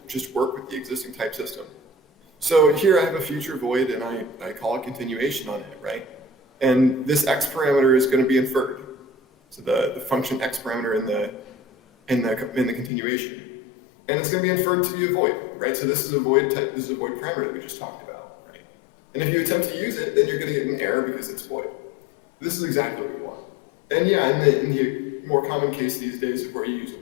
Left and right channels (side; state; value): right; drops out; at 12.9 s